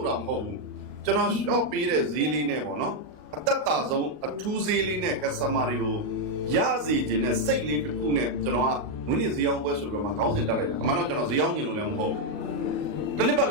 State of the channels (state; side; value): late; left; 40 ms